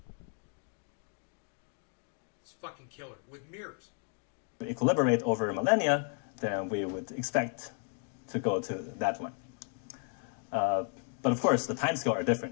It's fucking killer with mirrors. equilibrate over millennia, then we would expect to go to that one. But of course, the timescale are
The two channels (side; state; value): right; quieter; 38.2 dB